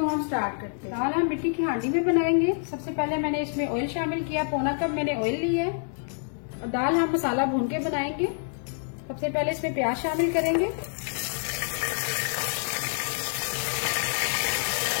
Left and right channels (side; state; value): right; silent; digital silence